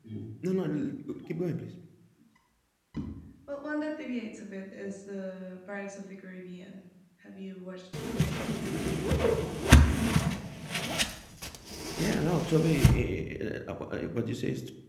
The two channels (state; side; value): identical; both; correlation 1.00